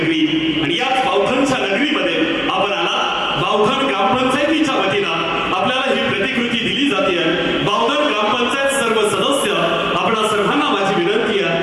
आणि याच बावधनच्या नगरीमध्ये आपण आला. बावधन ग्रामपंचायतीच्या वतीनं आपल्याला ही प्रतिकृती दिली जाते. बावधन ग्रामपंचायत सर्व सदस्य आपणा सर्वांना माझी विनंती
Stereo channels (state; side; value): identical; both; correlation 1.00